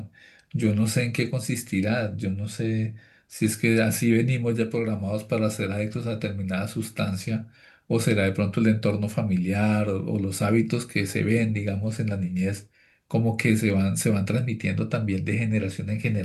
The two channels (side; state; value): both; identical; correlation 1.00